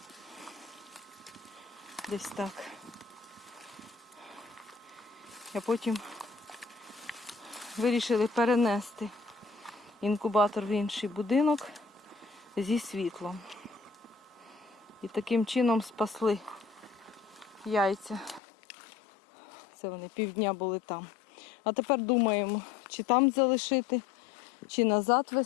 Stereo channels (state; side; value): drops out; right; at 18.4 s